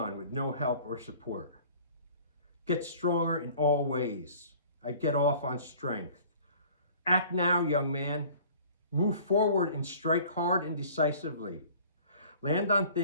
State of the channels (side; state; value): both; inverted; correlation -0.49